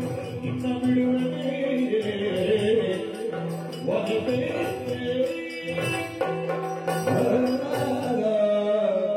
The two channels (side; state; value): both; identical; correlation 1.00